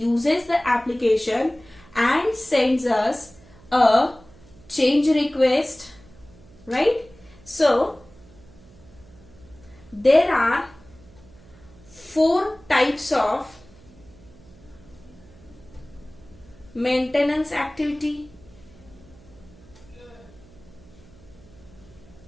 the application and sends us a change request, right? So there are 4 types of maintenance activity,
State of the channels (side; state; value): right; noise; hum, 24 dB below the sound